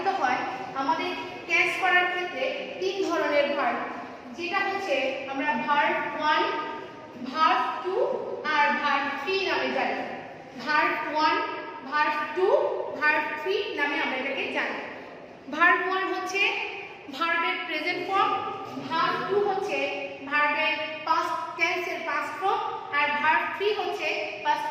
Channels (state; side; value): identical; both; correlation 1.00